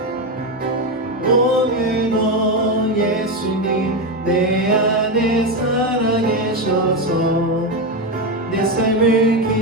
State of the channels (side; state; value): both; normal; correlation 0.12